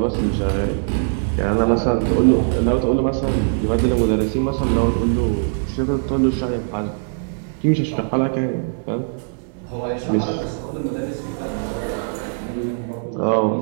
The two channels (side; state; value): left; silent; digital silence